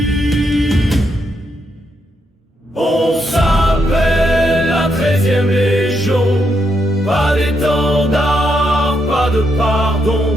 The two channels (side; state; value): both; normal; correlation 0.80